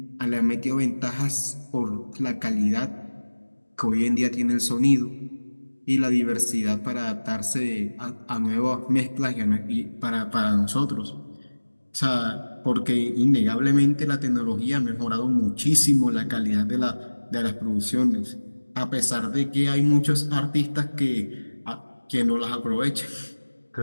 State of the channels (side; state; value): both; inverted; correlation -1.00